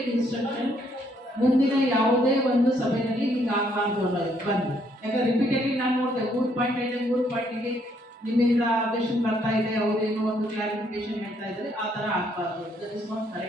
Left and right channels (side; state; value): both; normal; correlation 0.70